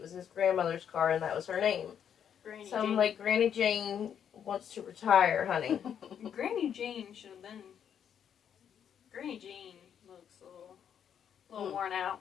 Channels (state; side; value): quieter; right; 8.5 dB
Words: was his grandmother's car and that was her name. Granny So I'm Jane. like, Granny Jane wants to retire, honey. Granny Jane should have been. Granny Jane looks a little worn out.